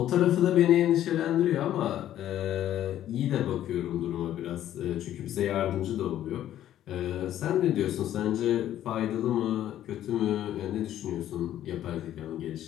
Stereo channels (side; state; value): right; quieter; 12.0 dB